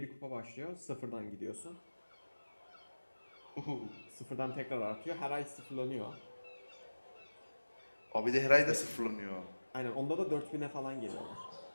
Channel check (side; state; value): both; inverted; correlation -1.00